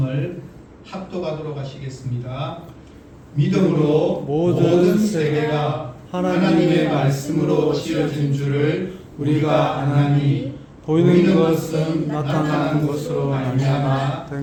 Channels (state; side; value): identical; both; correlation 1.00